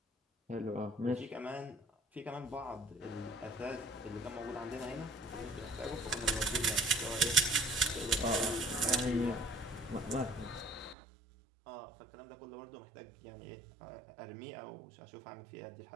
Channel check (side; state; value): left; drops out; at 11.0 s